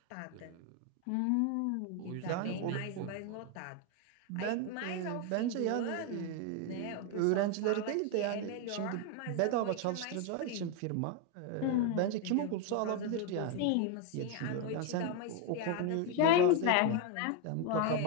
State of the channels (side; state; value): both; different; correlation 0.01